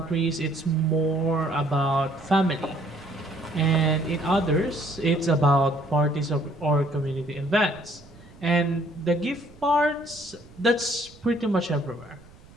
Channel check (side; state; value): right; noise; rumble, 23 dB below the sound